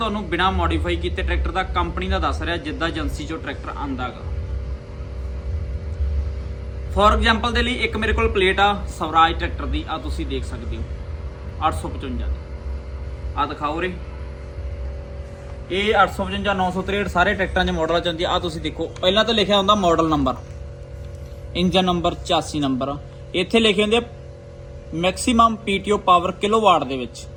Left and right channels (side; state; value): both; identical; correlation 1.00